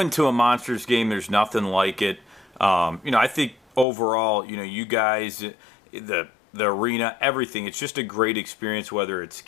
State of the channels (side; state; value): right; drops out; at 3.9 s